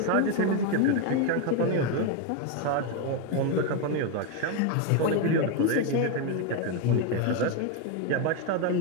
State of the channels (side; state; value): both; different; correlation 0.02